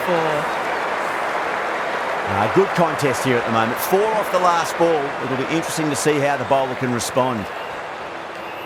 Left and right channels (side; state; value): both; identical; correlation 1.00